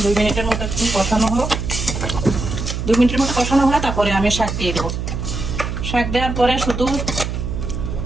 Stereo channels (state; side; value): noise; right; hum, 4 dB below the sound